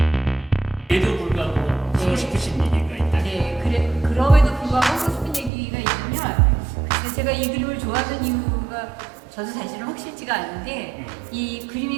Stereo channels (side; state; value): left; drops out; at 5.5 s